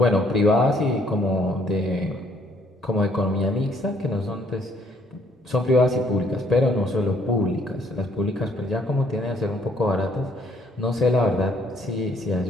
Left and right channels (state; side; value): normal; both; correlation 0.65